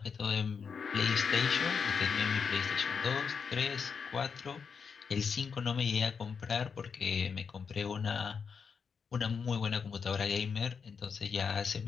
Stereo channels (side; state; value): right; quieter; 6.0 dB